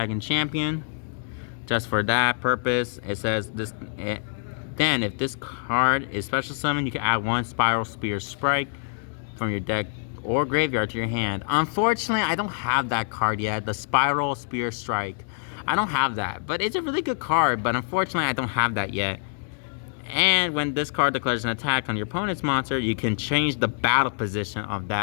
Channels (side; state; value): right; silent; digital silence